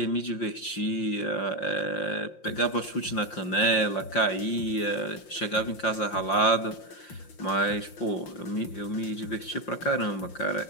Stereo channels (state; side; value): late; right; 5.7 ms